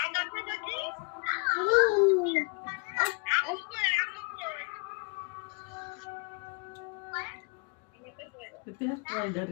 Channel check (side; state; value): right; quieter; 34.6 dB